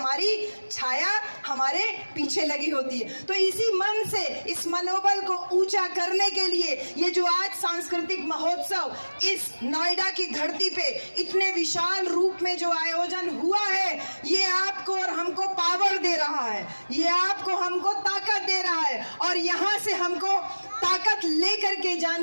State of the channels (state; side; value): inverted; both; correlation -1.00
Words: छाया हमारे पीछे लगी होती है। तो इसी मन से, इस मनोबल को ऊंचा करने के लिए ये जो आज सांस्कृतिक महोत्सव इस नोएडा की धरती पे इतने विशाल रूप में जो आयोजन हुआ है, ये आपको और हमको पावर दे रहा है, ये आपको हमको ताकत दे रहा है और यहाँ से हमको ताकत लेकर के